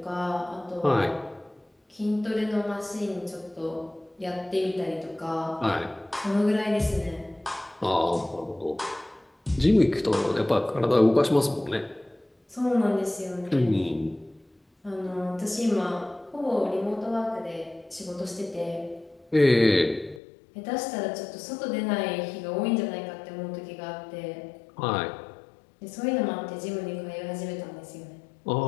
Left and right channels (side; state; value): right; drops out; at 20.2 s